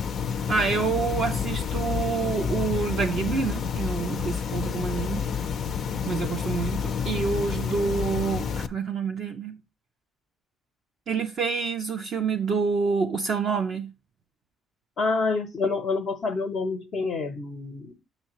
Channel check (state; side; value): normal; both; correlation 0.64